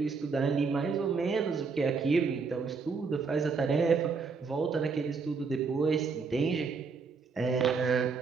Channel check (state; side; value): quieter; left; 4.9 dB